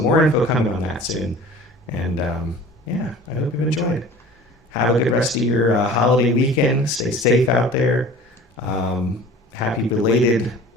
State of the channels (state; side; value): normal; both; correlation 0.43